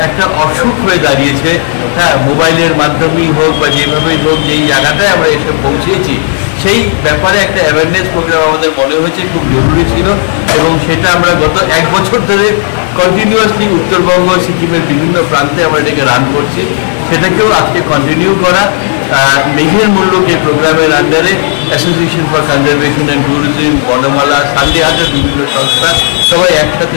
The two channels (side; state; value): right; silent; digital silence